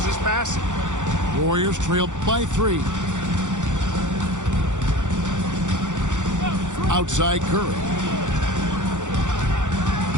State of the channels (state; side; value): late; left; 0.85 ms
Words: his passing. Warriors trail by 3. Outside Curry.